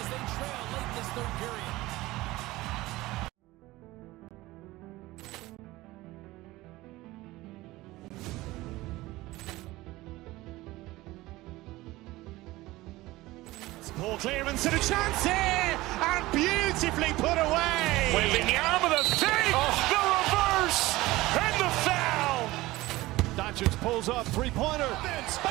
they trail late this third period. Poor clearance and a chance here, and beautifully put away. Waving the arm of the fake, the reverse, and the foul. Doncic pulls up, three-pointer.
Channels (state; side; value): quieter; left; 18.7 dB